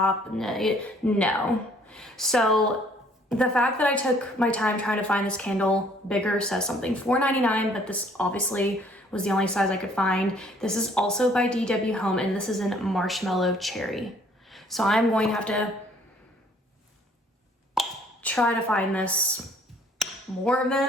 no. So the fact that I took my time trying to find this candle bigger says something. $4.99, but this obviously was the only size I could find. This is also by DW Home, and this is in Marshmallow Cherry. So I'm going to have to try to find this more of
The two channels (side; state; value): both; normal; correlation 0.60